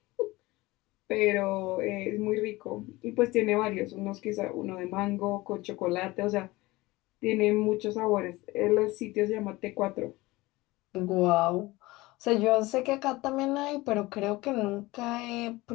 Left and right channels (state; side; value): quieter; right; 20.5 dB